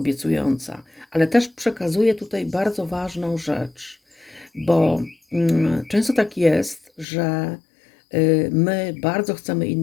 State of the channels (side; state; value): right; drops out; at 7.1 s